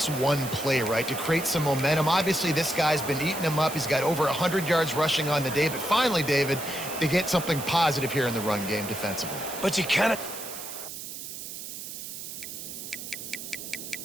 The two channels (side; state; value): right; noise; hiss, 9 dB below the sound